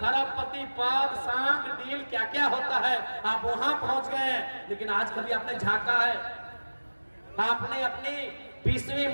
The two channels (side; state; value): both; inverted; correlation -1.00